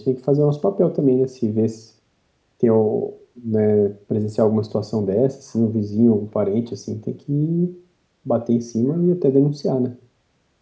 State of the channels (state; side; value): identical; both; correlation 1.00